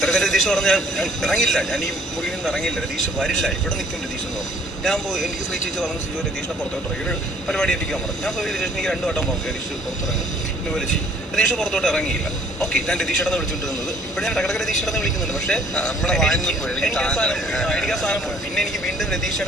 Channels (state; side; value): normal; both; correlation 0.59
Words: രതീഷ് പറഞ്ഞാൽ ഞാൻ ഇറങ്ങില്ല, ഞാൻ ഈ മുറിയിൽ നിന്ന് ഇറങ്ങില്ല, രതീഷ് വരില്ല, ഇവിടെ നിൽക്കും രതീഷ് എന്ന് പറഞ്ഞു. ഞാൻ പോയി, എനിക്ക് ശ്രീ ചേച്ചി പറഞ്ഞു സിജു രതീഷിനെ പുറത്തോട്ട് ഇറങ്ങി, ഒരു പരിപാടി എത്തിക്കാൻ പറഞ്ഞു. ഞാൻ പോയി രതീഷ് എനിക്ക് 2 വട്ടം പറഞ്ഞു രതീഷ് പുറത്തിറങ്ങി ഇന്ന് വിളിച്ച്. രതീഷ് പുറത്തോട്ട് ഇറങ്ങിയില്ല. ഓക്കെ, ഞാൻ രതീഷേട്ടനെ വിളിച്ചുകൊണ്ടിരുന്നത്. ഇപ്പോൾ ഞാൻ ഇടക്കിടക്ക് രതീഷേട്ടനെ വിളിക്കുന്നുണ്ട്. പക്ഷേ എനിക്ക് ആ സാധനം പോയി. പിന്നെ എനിക്ക് വീണ്ടും